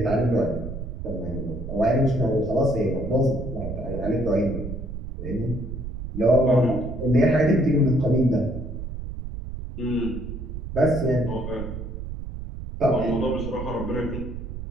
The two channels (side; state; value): right; noise; rumble, 7 dB below the sound